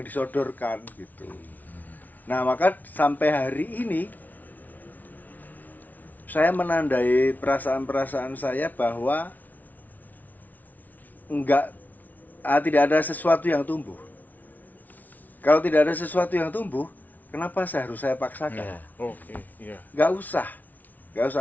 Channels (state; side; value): late; right; 0.078 ms